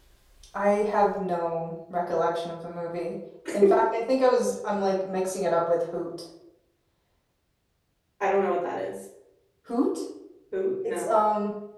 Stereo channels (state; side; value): identical; both; correlation 1.00